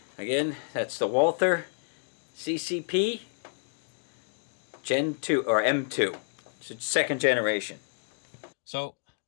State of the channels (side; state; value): right; silent; digital silence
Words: Again, that's the Walther CCP Gen 2 or M2. It's second generation. So